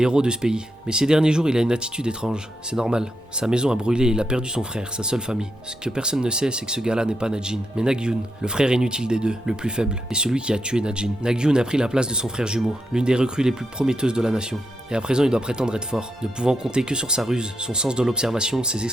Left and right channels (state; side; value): normal; both; correlation 0.83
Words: héros de ce pays. Mais ces derniers jours, il a une attitude étrange. C'est normal. Sa maison a brûlé et il a perdu son frère, sa seule famille. Ce que personne ne sait, c'est que ce gars-là n'est pas Najin, mais Nagyun, le frère inutile des deux, le plus faible, et celui qui a tué Najin. Nagyun a pris la place de son frère jumeau, l'une des recrues les plus prometteuses de la nation. Et à présent, il doit prétendre être fort, ne pouvant compter que sur sa ruse, son sens de l'observation, ses